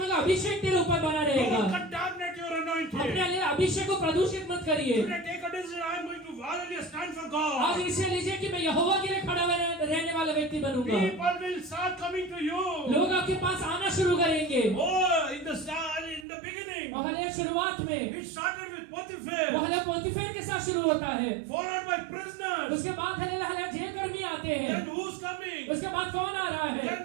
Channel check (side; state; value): left; drops out; at 16.2 s